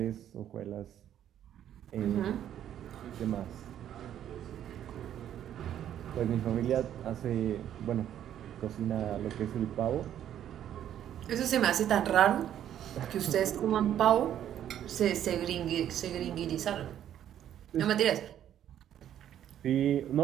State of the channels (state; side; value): quieter; left; 10.7 dB